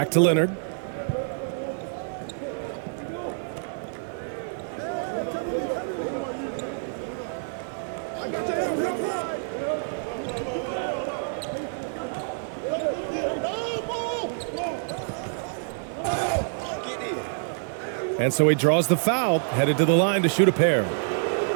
to Leonard. And so he draws the foul, headed to the line to shoot a pair.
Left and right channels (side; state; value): left; silent; 60 dB below the other